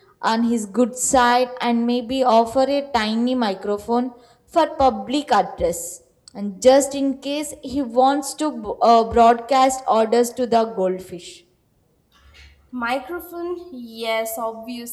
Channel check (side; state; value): both; identical; correlation 1.00